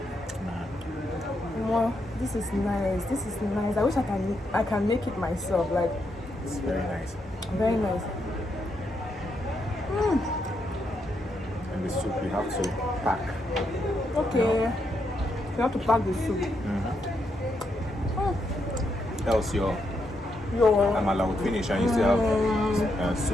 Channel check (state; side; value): normal; both; correlation 0.80